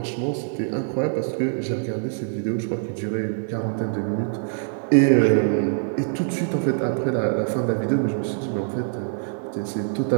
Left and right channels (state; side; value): silent; left; digital silence